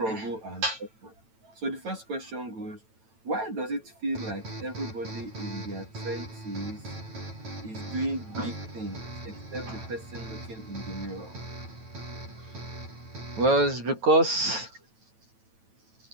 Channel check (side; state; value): left; late; 9.1 ms